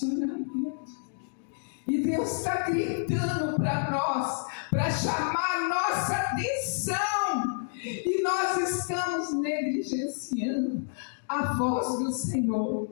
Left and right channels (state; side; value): silent; right; digital silence